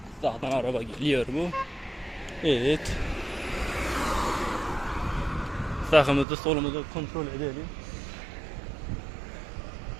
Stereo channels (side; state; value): left; drops out; at 6.2 s